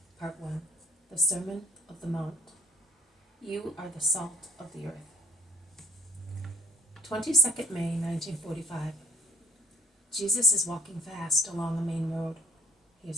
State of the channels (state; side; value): normal; both; correlation 0.59